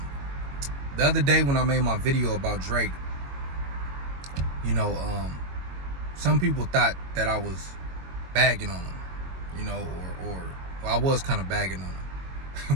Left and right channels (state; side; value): late; left; 22 ms